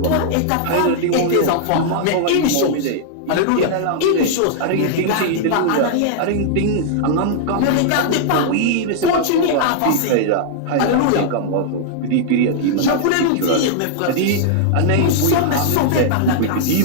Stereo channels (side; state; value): both; different; correlation -0.01